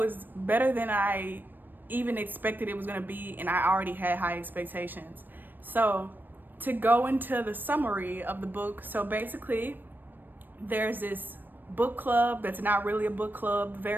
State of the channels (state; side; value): late; left; 0.092 ms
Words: better than I even expected it was gonna be, and I already had high expectations. So to go into the summary of the book, so basically there's this book club that's not really a book club,